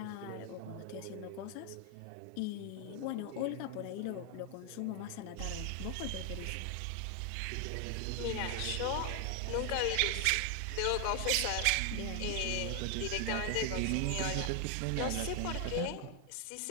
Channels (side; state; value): both; different; correlation 0.00